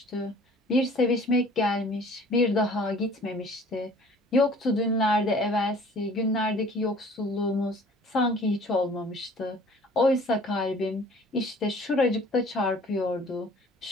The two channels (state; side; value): normal; both; correlation 0.51